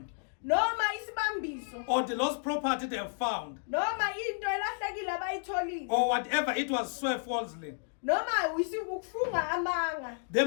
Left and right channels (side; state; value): right; silent; digital silence